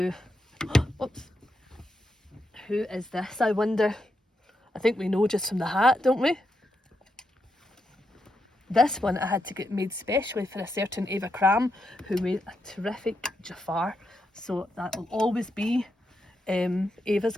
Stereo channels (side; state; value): both; normal; correlation 0.83